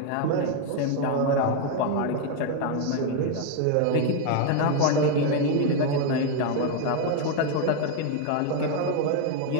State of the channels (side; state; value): both; different; correlation 0.01